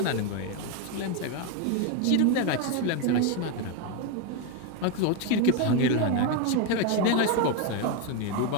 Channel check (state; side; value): different; both; correlation 0.02